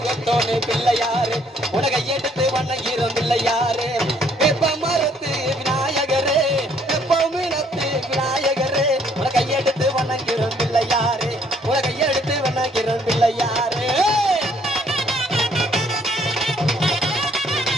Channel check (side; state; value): both; normal; correlation 0.64